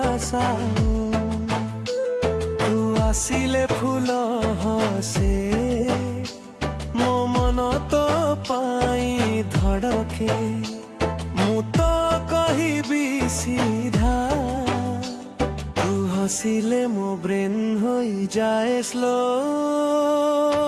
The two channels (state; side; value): identical; both; correlation 1.00